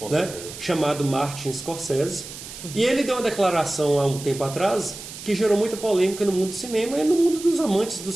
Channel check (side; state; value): right; noise; hiss, 12 dB below the sound